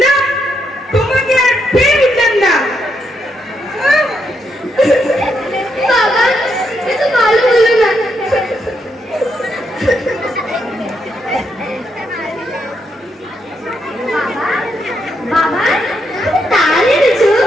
না, তোমাকে আর পেয়ে উঠলাম না। বাবা, এটা ভালো হলো না। বাবা, বাবা, তাল এনেছো?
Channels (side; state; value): both; normal; correlation 0.79